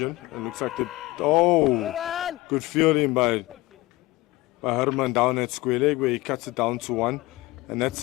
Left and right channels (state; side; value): quieter; right; 20.3 dB